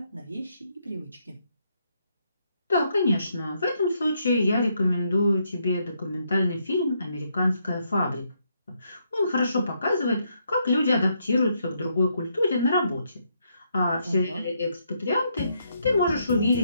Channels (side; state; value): both; inverted; correlation -0.76